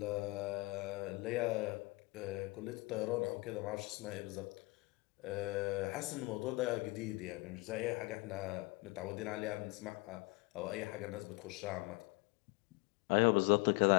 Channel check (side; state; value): right; quieter; 24.7 dB